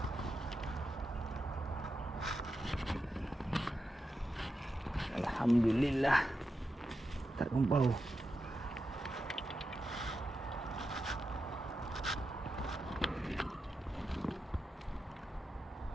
Alhamdulillah. Tak kumpau.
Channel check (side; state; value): both; normal; correlation 0.88